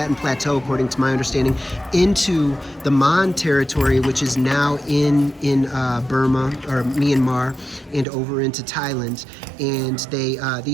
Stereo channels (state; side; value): drops out; left; at 8.1 s